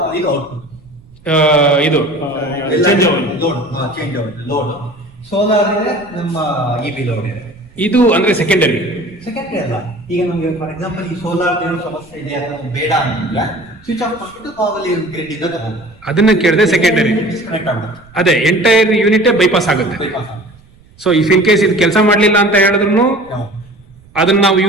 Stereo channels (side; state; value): right; noise; rumble, 27 dB below the sound